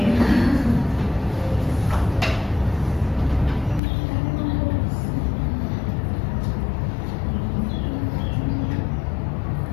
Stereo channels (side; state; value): right; drops out; at 3.8 s